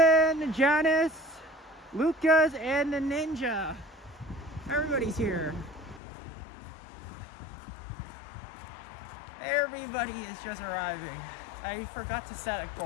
Janice, Lucas, and the Ninja. Everybody's here. Everybody is just arriving. I forgot to set a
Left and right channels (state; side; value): drops out; right; at 6.0 s